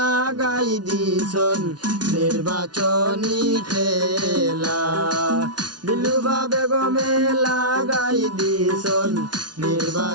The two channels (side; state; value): left; late; 0.69 ms